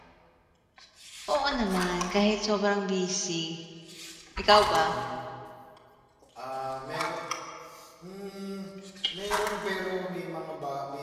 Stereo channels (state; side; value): identical; both; correlation 1.00